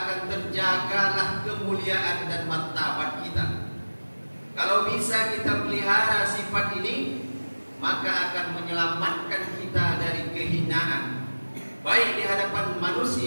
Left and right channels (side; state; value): both; inverted; correlation -1.00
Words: akan terjagalah kemuliaan dan martabat kita. Kalau bisa kita pelihara sifat ini, maka akan menyelamatkan kita dari kehinaan, baik di hadapan